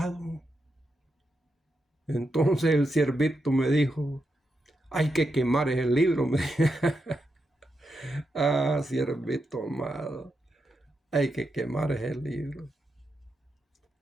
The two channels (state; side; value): normal; both; correlation 0.85